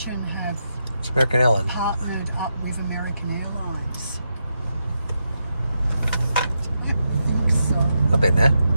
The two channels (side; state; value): both; inverted; correlation -0.85